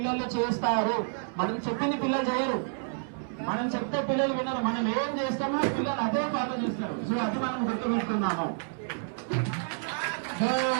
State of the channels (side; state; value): left; silent; 58 dB below the other